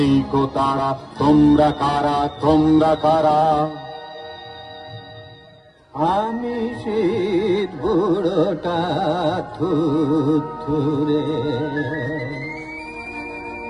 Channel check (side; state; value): both; identical; correlation 1.00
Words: কো তারা। তোমরা কারা, তোমরা কারা? আমি শীত বুড়োটা থুরে,